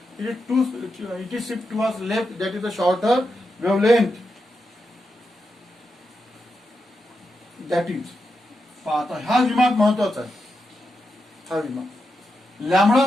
it is shift towards left. That is the shorter wavelength. That is. आता हा विभाग महत्वाचा आहे. हा विभाग lambda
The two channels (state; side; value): normal; both; correlation 0.87